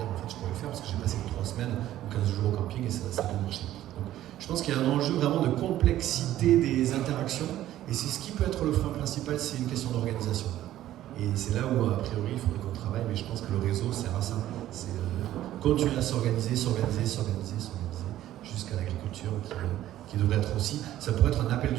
dire, en fait, je pourrais le faire, parce que j'ai passé 3 semaines ou 15 jours au camping, et ça a bien marché. Donc, je pense qu'il y a un enjeu vraiment de complexité des interactions, et c'est ce qui peut être le frein principal, c'est une question d'organisation. Et c'est là où, a priori, il faudrait qu'on travaille, mais je pense que le réseau sert à ça. C'est continuer à s'organiser, jusqu'à l'agriculture qui devrait être aussi. Ça pourrait être un appel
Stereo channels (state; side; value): quieter; left; 13.4 dB